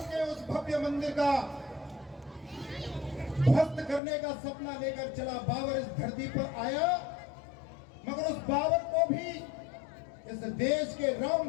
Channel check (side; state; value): right; drops out; at 4.0 s